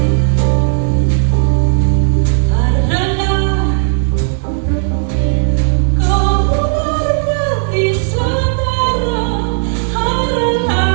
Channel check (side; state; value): left; silent; 67 dB below the other